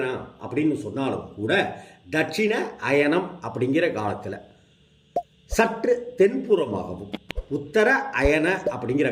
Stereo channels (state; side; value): identical; both; correlation 1.00